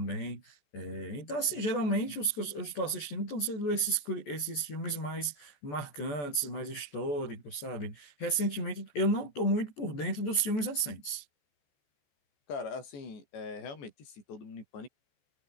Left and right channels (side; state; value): right; late; 14 ms